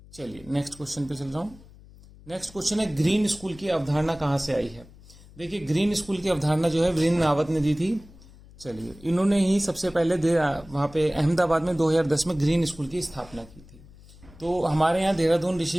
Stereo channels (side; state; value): left; noise; hum, 22 dB below the sound